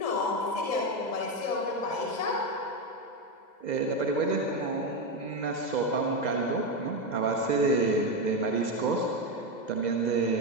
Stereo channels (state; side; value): late; right; 2.0 ms